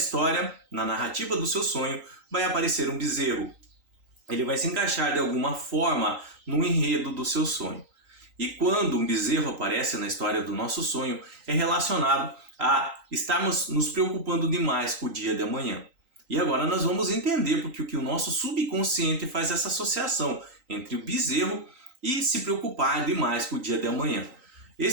na narrativa do seu sonho, vai aparecer um bezerro. Ele vai se encaixar de alguma forma no enredo do seu sonho. E quando um bezerro aparece na história do nosso sonho, é relacionado a estarmos nos preocupando demais com o dia de amanhã. E agora nós vamos entender porque o nosso subconsciente faz essa associação entre o bezerro e se preocupar demais com o dia de amanhã.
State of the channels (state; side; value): late; left; 3.9 ms